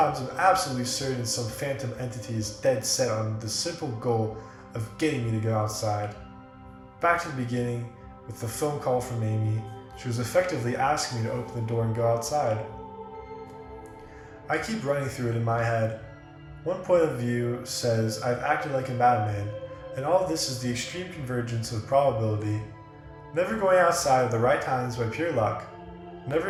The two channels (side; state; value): both; identical; correlation 1.00